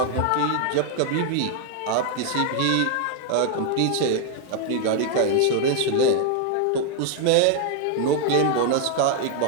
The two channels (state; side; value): different; both; correlation 0.00